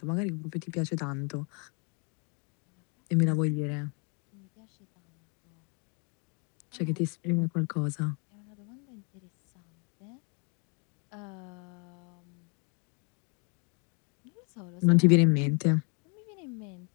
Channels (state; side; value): quieter; right; 35.6 dB